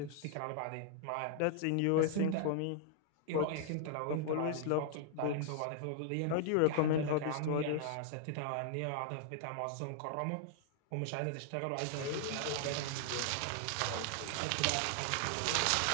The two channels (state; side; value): different; both; correlation -0.01